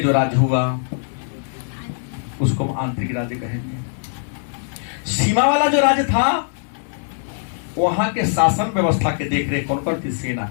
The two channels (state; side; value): silent; right; 65 dB below the other